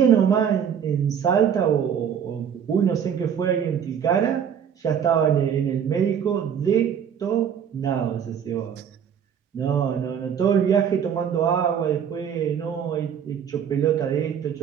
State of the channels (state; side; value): quieter; left; 8.1 dB